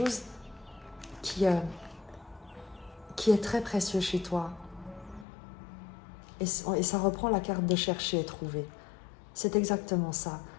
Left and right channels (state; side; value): drops out; right; at 5.2 s